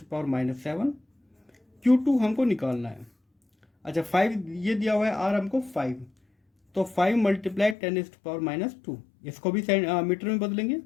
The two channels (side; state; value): right; drops out; at 7.8 s